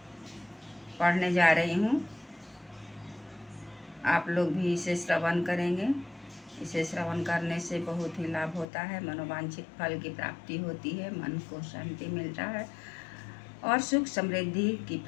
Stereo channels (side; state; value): right; drops out; at 8.7 s